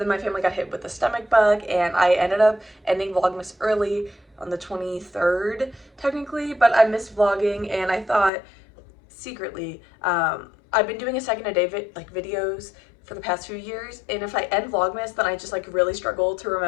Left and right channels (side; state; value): right; drops out; at 8.3 s